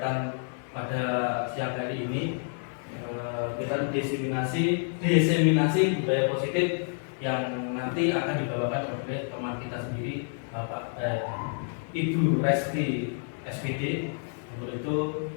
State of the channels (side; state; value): right; silent; 59 dB below the other